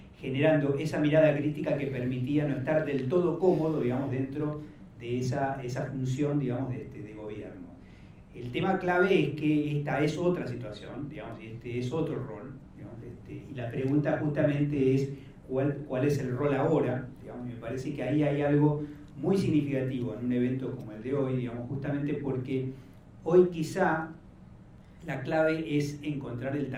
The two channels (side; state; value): both; identical; correlation 1.00